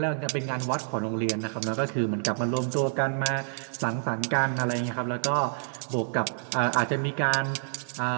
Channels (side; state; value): left; silent; 59 dB below the other